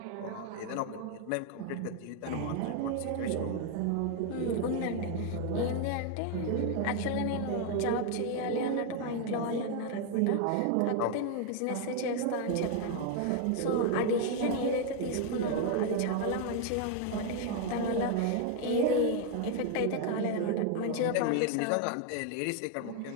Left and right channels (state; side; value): different; both; correlation 0.00